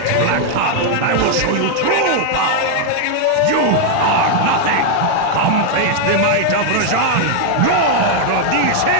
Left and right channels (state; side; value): different; both; correlation 0.00